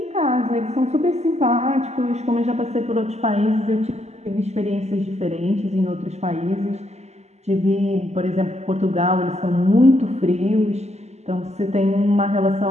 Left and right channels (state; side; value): late; left; 0.32 ms